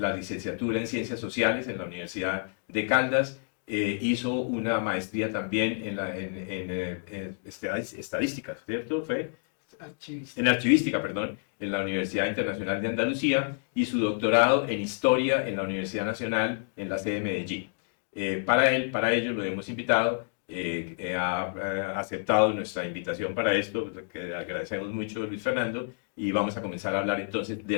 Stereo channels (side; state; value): right; silent; digital silence